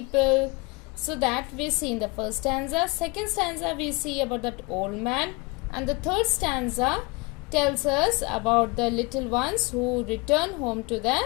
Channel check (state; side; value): quieter; right; 26.2 dB